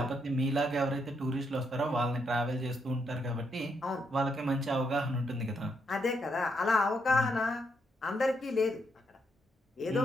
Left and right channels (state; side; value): normal; both; correlation 0.77